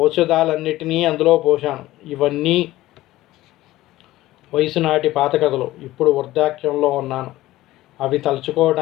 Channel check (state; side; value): quieter; right; 16.5 dB